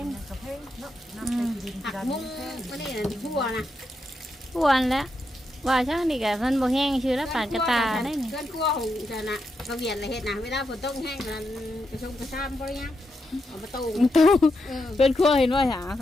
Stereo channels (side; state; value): both; normal; correlation 0.84